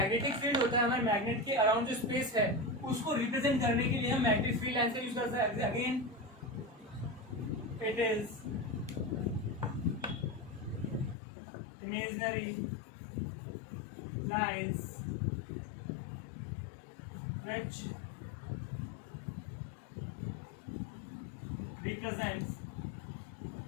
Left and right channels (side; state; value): right; drops out; at 11.2 s